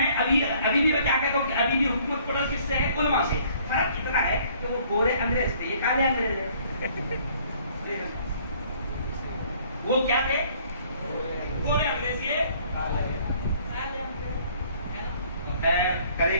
ابھی بھی میں کیا کہتا ہوں کہ ابھی بھی حکومت کو ڈر کس سے ہے؟ علماء سے۔ فرق اتنا ہے کہ وہ گورے انگریز تھے، یہ کالے انگریز ہے۔ وہ کیا تھے؟ گورے انگریز، یہ کرے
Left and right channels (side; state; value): both; inverted; correlation -0.59